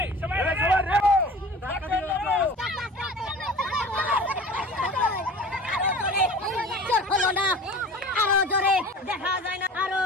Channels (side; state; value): both; normal; correlation 0.40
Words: সবাই রেডি ধাক্কা দিও জোর হলো না আরো জোরে দেখা যায় না আরো